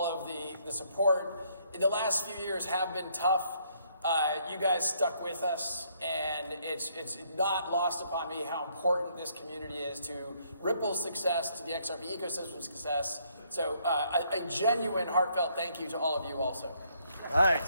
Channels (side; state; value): both; inverted; correlation -0.69